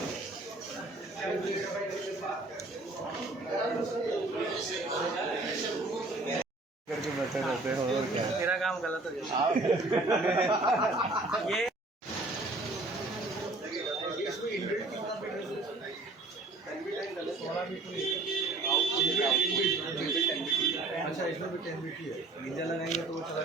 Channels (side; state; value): left; quieter; 3.1 dB